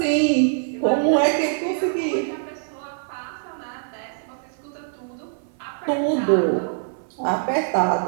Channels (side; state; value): left; silent; 57 dB below the other